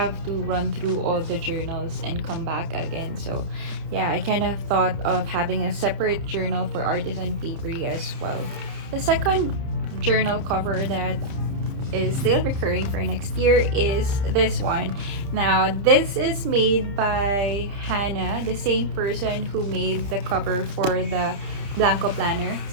to run through all the journals and come back again. So yeah, I kind of thought of having a separate journal for Artisan Paperie as well. The second journal cover that is still recurring for next year is this one. Now this is made by Hannah, the same person who made the cover for the Blanco planner.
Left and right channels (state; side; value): late; left; 30 ms